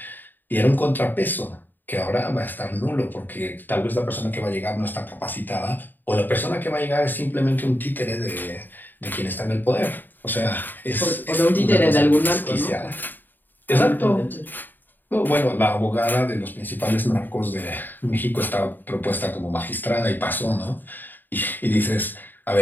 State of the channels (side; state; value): right; late; 0.090 ms